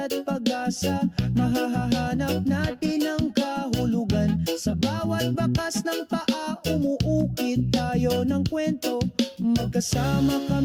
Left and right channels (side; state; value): both; identical; correlation 1.00